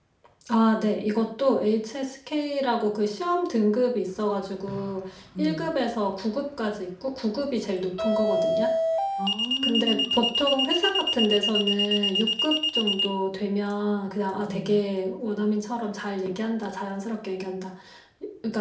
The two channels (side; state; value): both; identical; correlation 1.00